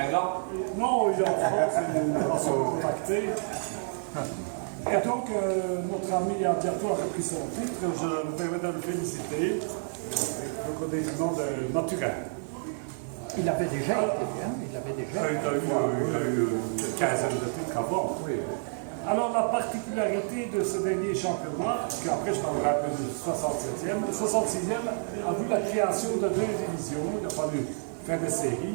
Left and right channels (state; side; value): silent; left; 59 dB below the other